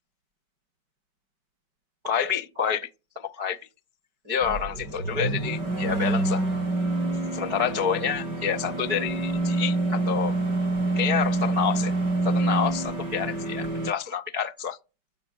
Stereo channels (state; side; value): late; left; 5.2 ms